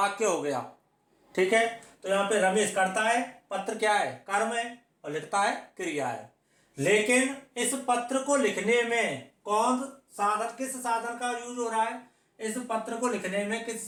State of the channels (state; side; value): identical; both; correlation 1.00